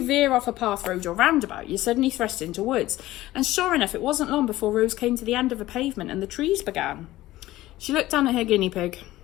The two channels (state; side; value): quieter; right; 16.3 dB